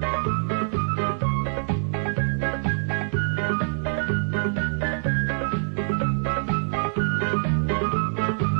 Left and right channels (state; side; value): silent; left; digital silence